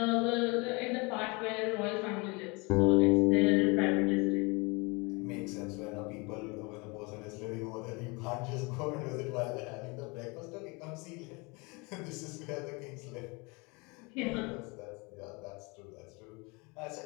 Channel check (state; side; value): quieter; right; 28.1 dB